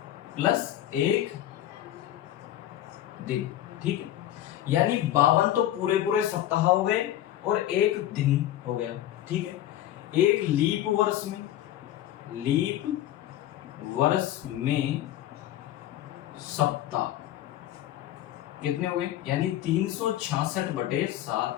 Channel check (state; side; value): quieter; right; 12.9 dB